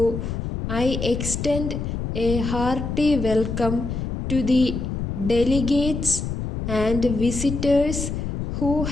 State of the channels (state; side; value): noise; left; rumble, 4 dB below the sound